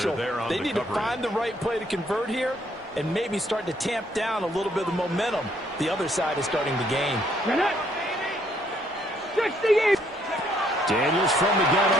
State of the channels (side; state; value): both; normal; correlation 0.68